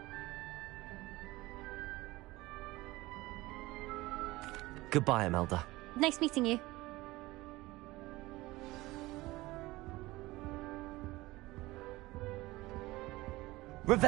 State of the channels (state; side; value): quieter; left; 19.6 dB